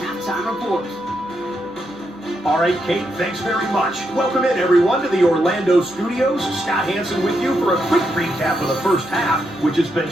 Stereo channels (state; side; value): normal; both; correlation 0.81